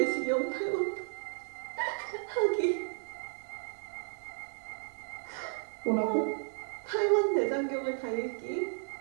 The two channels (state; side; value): silent; left; 55 dB below the other